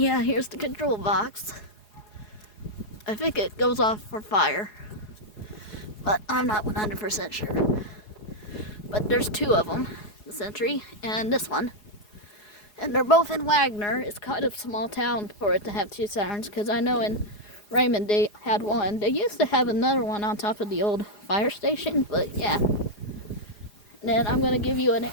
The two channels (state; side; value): late; right; 4.8 ms